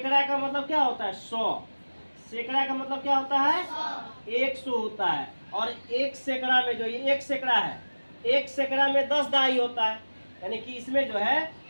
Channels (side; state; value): both; inverted; correlation -1.00